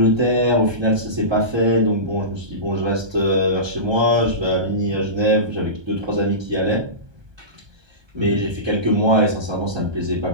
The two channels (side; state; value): left; late; 1.2 ms